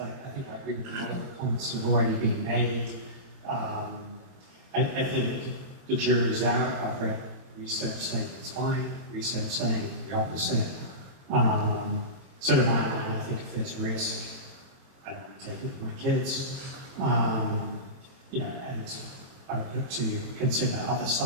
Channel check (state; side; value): late; left; 23 ms